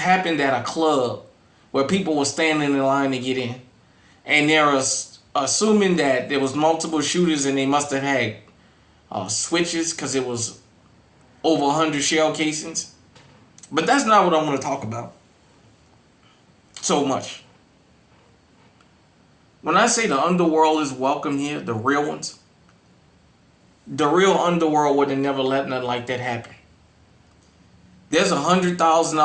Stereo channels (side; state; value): both; identical; correlation 1.00